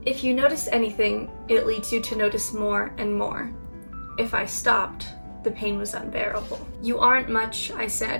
If you notice anything, it leads you to notice more and more. If I stopped, The pain was unbearable. "You aren't much," I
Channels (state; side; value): inverted; both; correlation -1.00